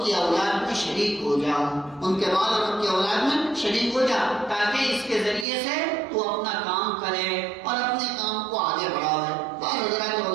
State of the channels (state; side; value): drops out; left; at 5.5 s